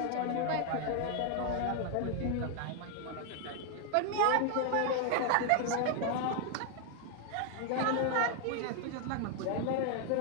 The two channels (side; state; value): both; different; correlation 0.00